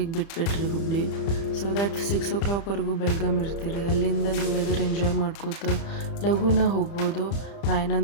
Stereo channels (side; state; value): right; late; 30 ms